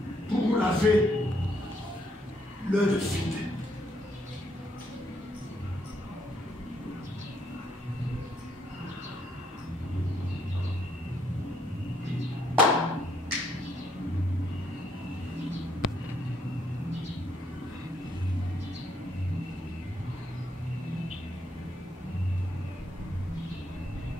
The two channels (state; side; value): normal; both; correlation 0.72